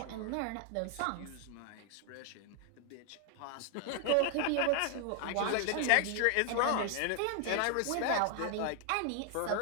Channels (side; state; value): both; different; correlation 0.00